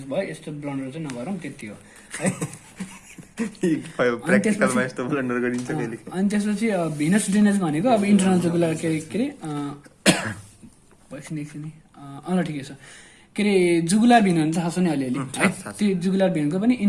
भयो, यस्तो ब्लन्डर चाहिँ नगरौँ, त्यति हो है। अनि त्यसपछि भिनस ड्रेनेज भनेको अब इन्टरनल जुगुलर के अरे एकछिन ल ठिकै छ के अरे जुगुलार भेन भने थाहा छ नि अलिअलि है। त्यो जुगुलार भेनको पनि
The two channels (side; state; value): both; identical; correlation 1.00